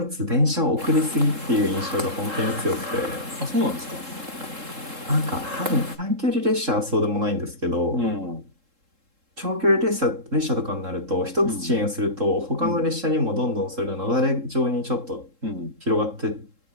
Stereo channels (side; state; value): left; late; 3.7 ms